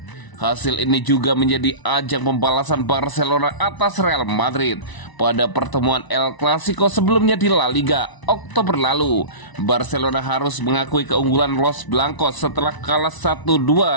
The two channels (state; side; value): late; right; 1.0 ms